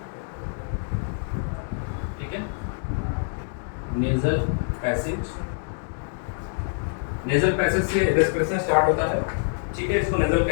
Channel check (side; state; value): right; silent; 61 dB below the other